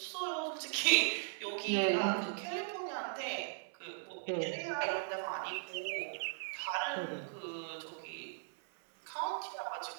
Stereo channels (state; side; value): silent; left; 52 dB below the other